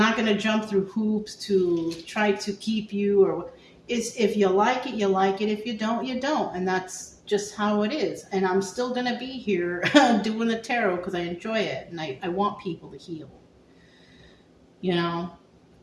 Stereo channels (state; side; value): identical; both; correlation 1.00